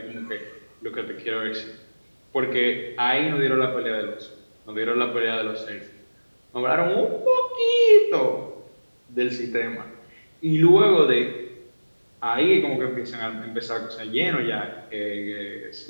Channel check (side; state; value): both; inverted; correlation -1.00